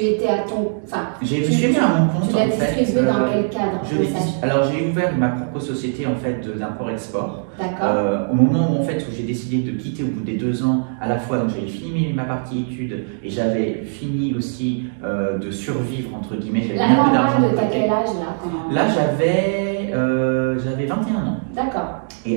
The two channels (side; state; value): left; silent; digital silence